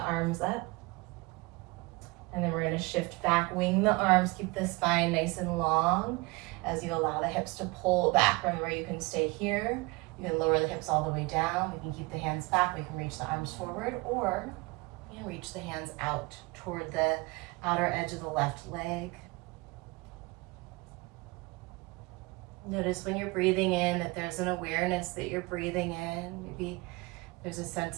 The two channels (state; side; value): quieter; left; 24.9 dB